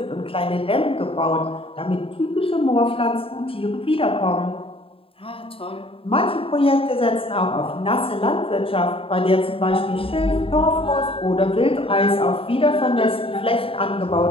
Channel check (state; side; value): late; right; 0.27 ms